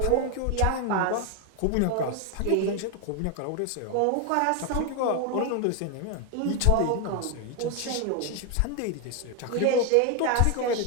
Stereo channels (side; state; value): both; different; correlation 0.01